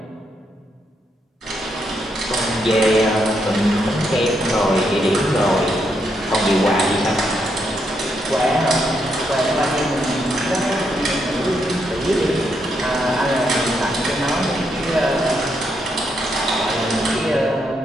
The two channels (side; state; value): both; normal; correlation 0.78